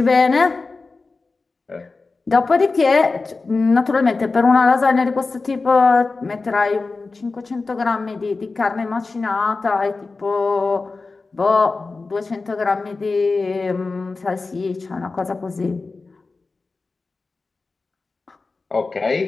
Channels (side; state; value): right; quieter; 3.9 dB